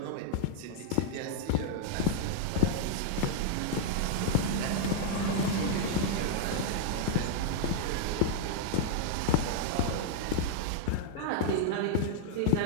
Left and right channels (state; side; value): different; both; correlation -0.01